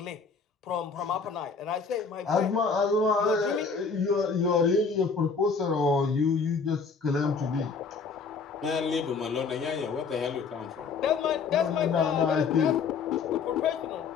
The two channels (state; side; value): quieter; right; 5.1 dB